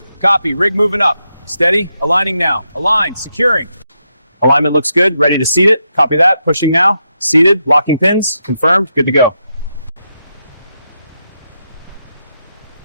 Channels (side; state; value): both; inverted; correlation -0.83